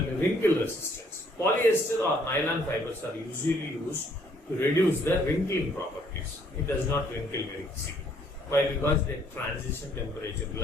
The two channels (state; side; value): normal; both; correlation 0.65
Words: wrinkle resistance. Polyester or nylon fibers are usually used to reduce the wrinkling properties. It does not wrinkle very easily. Why? Because the transition temperature,